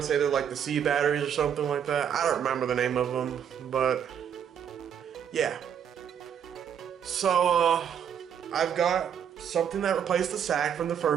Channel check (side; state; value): left; quieter; 8.5 dB